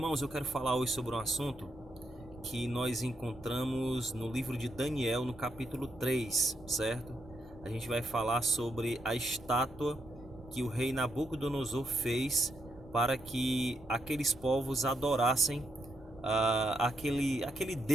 eu quero falar hoje sobre um assunto que nós encontramos no livro de Daniel, no capítulo 3, certo? A gente vai falar sobre a estátua que o rei Nabucodonosor fez para que aqueles povos adorassem aquele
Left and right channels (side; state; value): both; normal; correlation 0.80